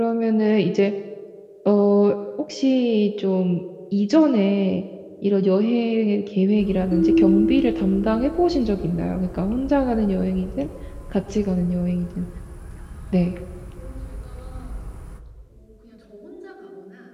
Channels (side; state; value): both; identical; correlation 1.00